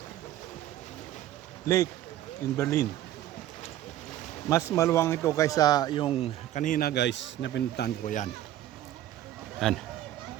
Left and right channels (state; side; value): quieter; left; 13.0 dB